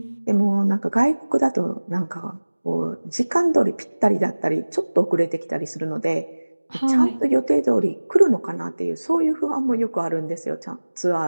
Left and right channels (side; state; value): both; inverted; correlation -1.00